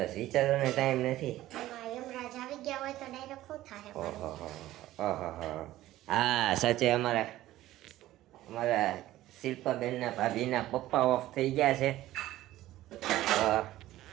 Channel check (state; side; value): quieter; left; 15.1 dB